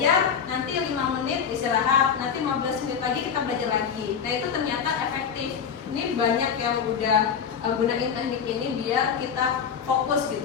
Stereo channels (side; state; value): right; quieter; 7.1 dB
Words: nanti 5 menit istirahat, nanti 15 menit lagi kita belajar lagi. Nah itu ternyata efektif. Ini banyak yang udah gunain teknik ini biar kita fokus